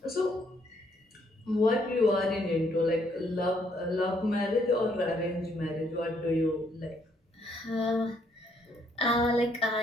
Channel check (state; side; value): normal; both; correlation 0.70